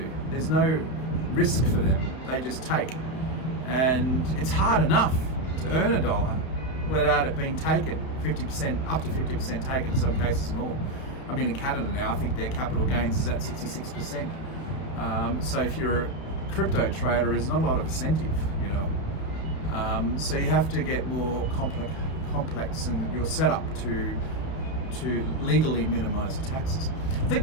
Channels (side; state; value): right; late; 31 ms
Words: There's no risk for them, they just take. And it's hard enough to earn $1 without it being taken, 50%, up to 50% taken, in some cases more. I mean, in Canada now, I think their capital gains is at 66%. So if you're a crypto trader, there's not a lot of incentive, you know. So you have to get more complex in your setup to legally minimize the taxes. I think